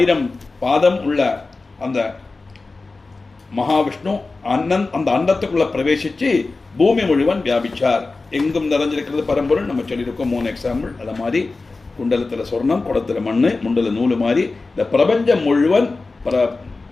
பாதம் உள்ள அந்த மகாவிஷ்ணு அந்த அண்டத்துக்குள்ள பிரவேசிச்சு பூமி முழுவன் வியாபிச்சார். எங்கும் நிறைஞ்சிருக்கிறது பரம்பொருள். நம்ம சொல்லியிருக்கோம் 3 எக்ஸாம்பிள். அதை மாதிரி குண்டலத்தில் சொர்ணம், குடத்துல மண்ணு, முண்டல நூலு மாதிரி இந்த பிரபஞ்சம் முழுவன்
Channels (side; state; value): right; quieter; 3.7 dB